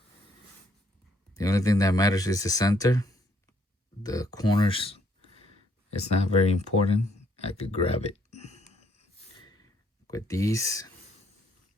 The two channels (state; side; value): normal; both; correlation 0.68